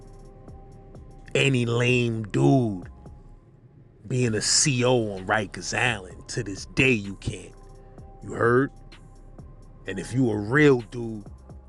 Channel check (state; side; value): identical; both; correlation 1.00